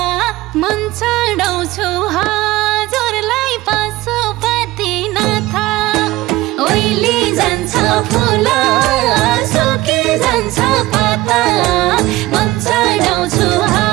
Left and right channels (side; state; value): left; quieter; 18.2 dB